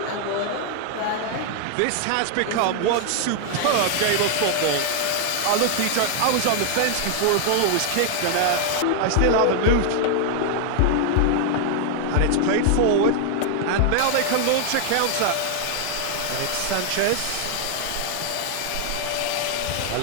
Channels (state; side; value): different; both; correlation 0.00